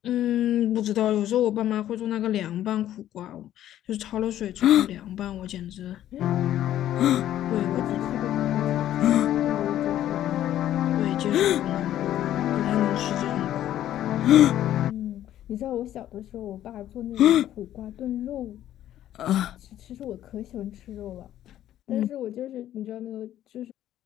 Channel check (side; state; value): right; quieter; 12.2 dB